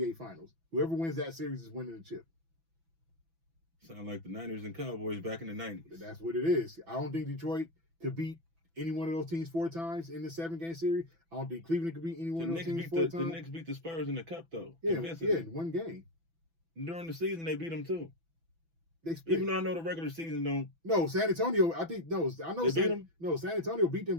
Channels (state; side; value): late; left; 6.0 ms